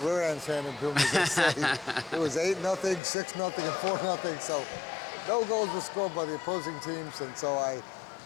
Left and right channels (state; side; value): drops out; right; at 3.0 s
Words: rear ends handed to them, as they say. It was 8-0, 6-0, and 4-0. So no goals were scored by the opposing teams, and so I